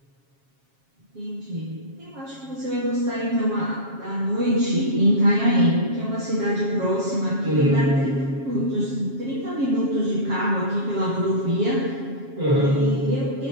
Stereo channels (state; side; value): late; left; 7.4 ms